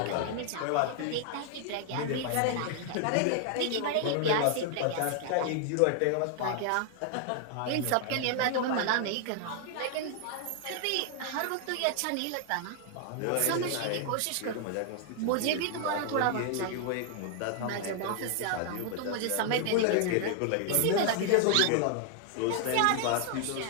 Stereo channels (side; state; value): both; different; correlation 0.00